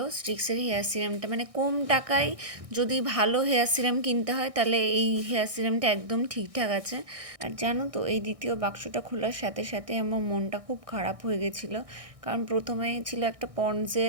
স্ট্রিক্সের হেয়ার সিরামটা, মানে কম টাকায় যদি ভালো হেয়ার সিরাম কিনতে হয় তাহলে এই হেয়ার সিরামটা একদম ঠিকঠাক আছে। আর জানো তো, এই দ্বিতীয় বাক্সটা খোলার সাথে সাথে আমার মনটা খুব খারাপ হয়ে গেছিলো। কারণ প্রথমে ছিল একটা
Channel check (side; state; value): left; late; 1.6 ms